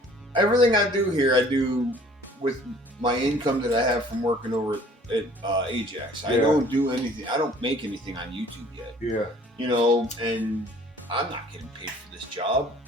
everything I do here, I do with my income that I have from working over at Ajax. I Yeah. don't do anything. I don't make anything on YouTube yet. Yeah. You know, and I'm not getting paid for this job.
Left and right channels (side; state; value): both; normal; correlation 0.53